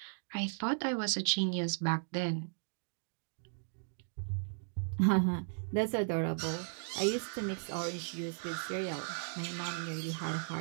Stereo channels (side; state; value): left; silent; digital silence